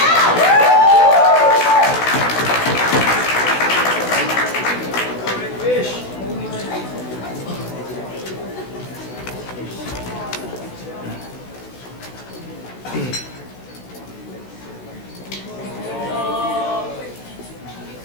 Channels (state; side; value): late; right; 16 ms